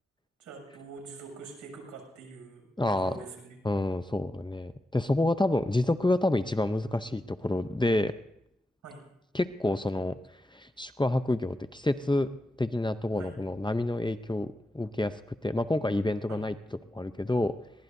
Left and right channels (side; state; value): both; normal; correlation 0.89